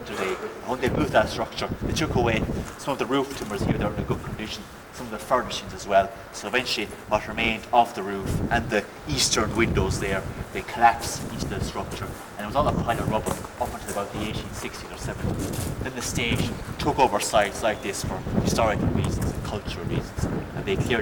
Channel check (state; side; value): identical; both; correlation 1.00